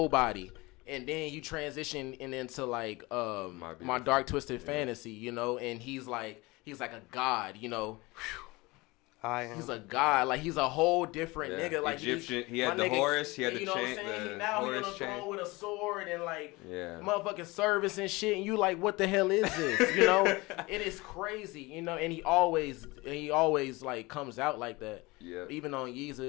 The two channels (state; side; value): quieter; right; 23.0 dB